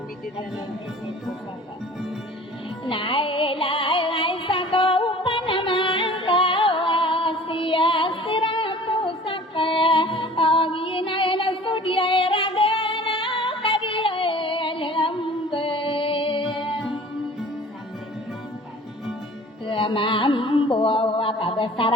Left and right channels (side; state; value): both; normal; correlation 0.46